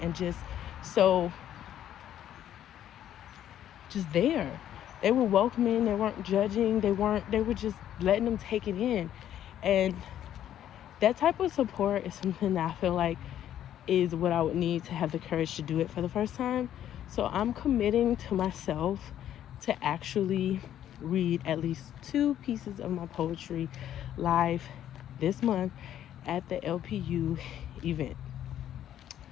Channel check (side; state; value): right; quieter; 11.0 dB